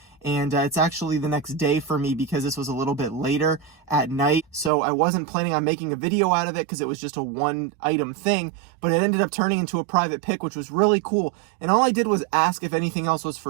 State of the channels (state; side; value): drops out; left; at 4.7 s